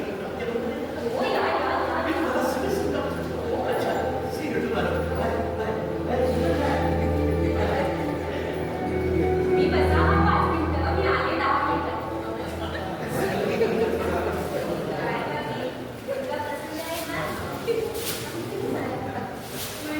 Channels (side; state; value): both; identical; correlation 1.00